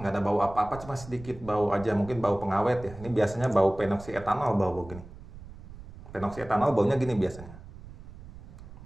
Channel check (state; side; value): noise; right; rumble, 16 dB below the sound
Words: bau apa-apa, cuma sedikit bau aja, mungkin bau pengawet ya. Ini biasanya bau penoksietanol, bau gini. Penoksietanol baunya gini biasanya.